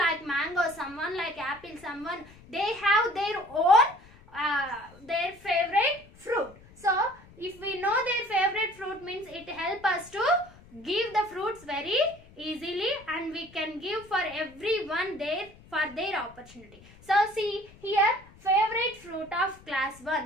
like mango, someone like apple, someone they have their own their favorite fruit. So if we know their favorite fruit, means it helps us to give the fruits very easily, and we can give for everyone for their opportunity. So see here, favorite fruit of class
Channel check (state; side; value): noise; left; rumble, 23 dB below the sound